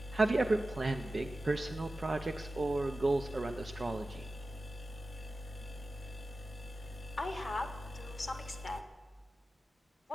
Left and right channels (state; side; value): normal; both; correlation 0.94